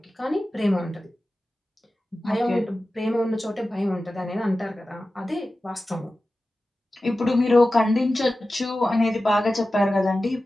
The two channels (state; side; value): normal; both; correlation 0.94